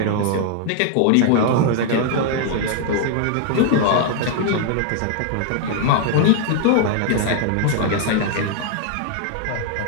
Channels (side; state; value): both; different; correlation 0.00